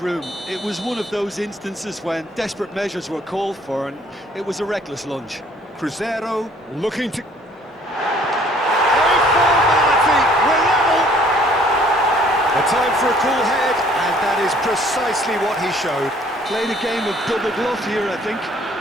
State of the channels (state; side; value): normal; both; correlation 0.58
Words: room. It was one of those instances when desperate measures were called for, and it was a reckless lunge. Cruzeiro looking to... A formality, we're level! A time for a cool head, and that is precisely what he showed. Played a game of double bluff here, I think.